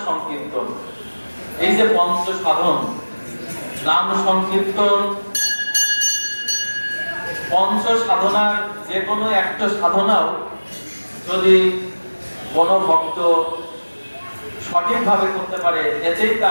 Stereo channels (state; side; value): inverted; both; correlation -1.00